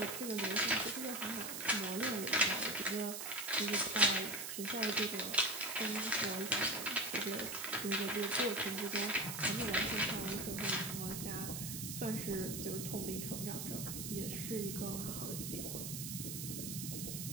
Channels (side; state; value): right; noise; hiss, 5 dB below the sound